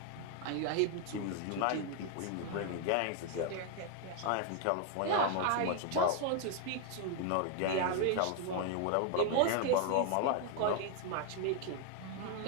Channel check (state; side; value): different; both; correlation 0.01